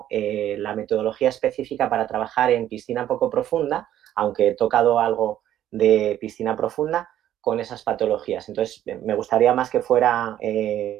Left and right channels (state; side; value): quieter; left; 11.8 dB